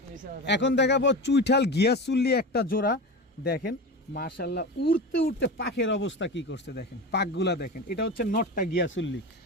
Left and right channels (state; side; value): normal; both; correlation 0.26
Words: এখন দেখাবো চুইঠাল গিয়াসুল্লি একটা জোড়া। দেখেন মাশাআল্লাহ, উড়তে উড়তে পাখের অবস্থা কি করছে দেখেন, পাকগুলা দেখেন। এটা হচ্ছে নটটা গিয়াসুল্লি।